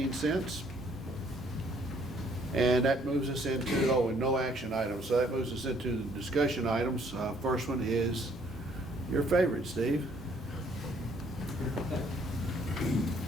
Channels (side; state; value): both; normal; correlation 0.63